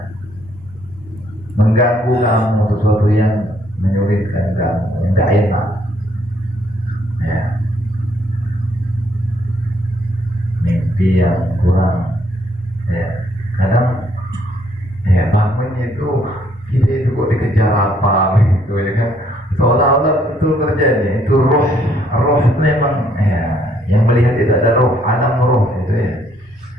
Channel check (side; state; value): both; normal; correlation 0.68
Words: mengganggu kamu, sesuatu yang menyulitkan kamu, yang gak enak ya, mimpi yang kurang ya, kadang ya bangunnya itu kita itu kok dikejar apa gitu ya kan, seolah-olah itu terjadi, itu roh memang ya, yang melihat itu ada roh, alam roh itu ya,